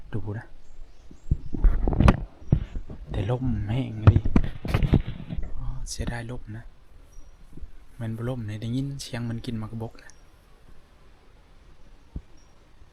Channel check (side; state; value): both; identical; correlation 1.00